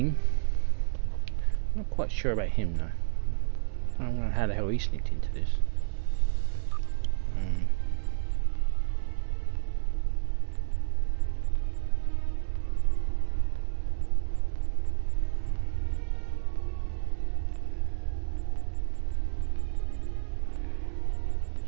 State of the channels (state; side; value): silent; left; 58 dB below the other